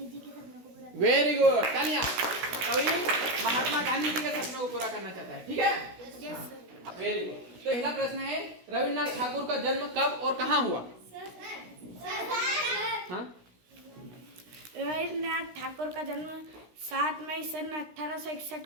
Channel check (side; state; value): left; late; 16 ms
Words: जी के सपनों को पूरा। वेरी गुड, तालियां। कवि महात्मा गांधी जी के सपनों को पूरा करना चाहता है। ठीक है, वेरी गुड। तो पहला प्रश्न है, रविन्द्रनाथ ठाकुर का जन्म कब और कहाँ हुआ? हाँ? रविन्द्रनाथ ठाकुर का जन्म 7 मई सन 1861